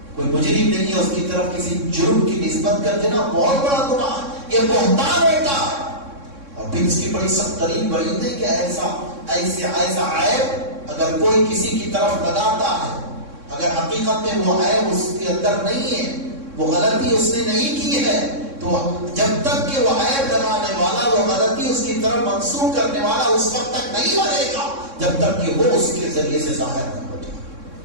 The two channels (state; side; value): late; left; 3.6 ms